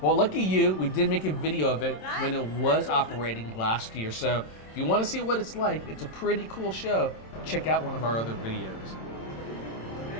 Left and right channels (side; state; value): right; late; 27 ms